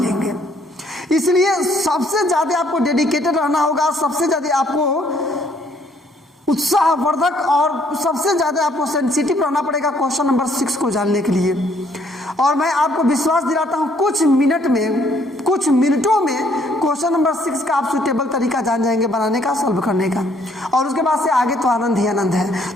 इसलिए सबसे ज़्यादा आपको डेडिकेटेड रहना होगा, सबसे ज़्यादा आपको उत्साहवर्धक और सबसे ज़्यादा आपको सेंसिटिव रहना पड़ेगा क्वेश्चन नंबर 6 को जानने के लिए। और मैं आपको विश्वास दिलाता हूँ कुछ मिनटों में क्वेश्चन नंबर 6 का आप सुटेबल तरीका जान जाएंगे बनाने का, सॉल्व करने का, और उसके बाद से आगे तो आनंद ही आनंद है।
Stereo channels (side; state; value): both; normal; correlation 0.66